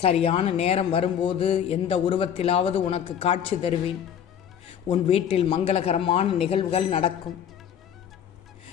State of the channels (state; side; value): quieter; right; 8.9 dB